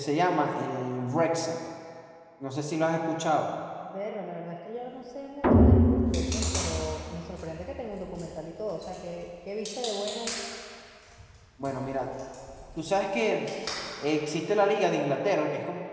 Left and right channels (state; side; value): identical; both; correlation 1.00